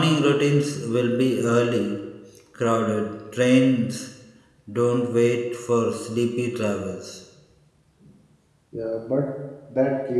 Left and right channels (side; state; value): both; identical; correlation 1.00